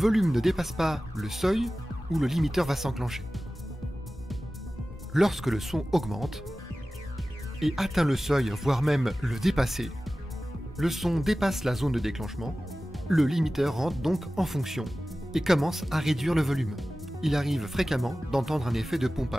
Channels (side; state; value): both; normal; correlation 0.96